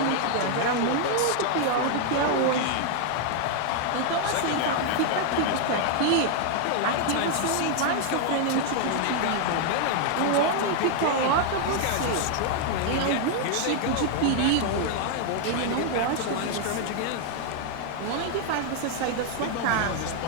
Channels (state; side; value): different; both; correlation 0.00